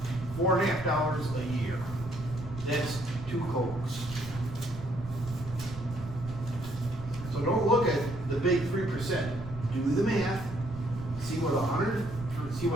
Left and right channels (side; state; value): right; noise; rumble, 11 dB below the sound